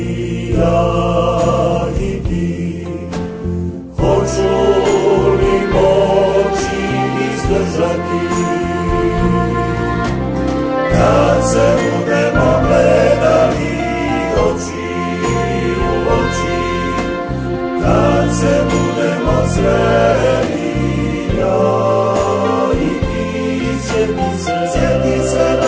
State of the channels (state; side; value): identical; both; correlation 1.00